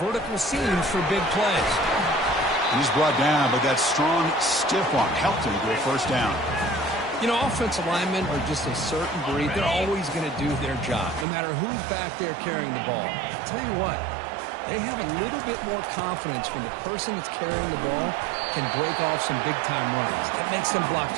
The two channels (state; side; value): drops out; left; at 11.2 s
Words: seams for big plays. He's brought down, but that strong, stiff arm helped him to a first down. You know, offensive linemen are just a certain breed. They're always going to do their job, no matter who's back there carrying the ball. I'll tell you what, they have a little bit more confidence when the person that's carrying the ball can break off some big-time runs. That makes them block